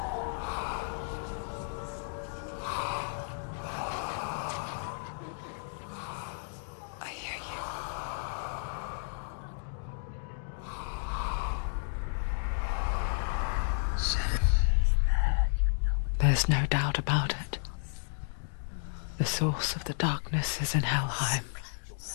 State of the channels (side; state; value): right; silent; digital silence